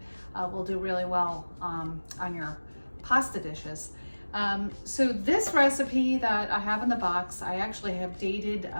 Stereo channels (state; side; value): inverted; both; correlation -1.00